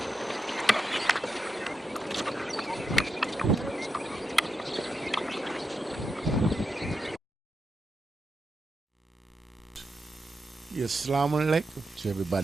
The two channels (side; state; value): both; normal; correlation 0.86